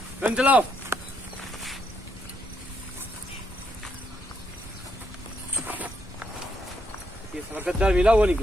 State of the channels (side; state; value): both; normal; correlation 0.76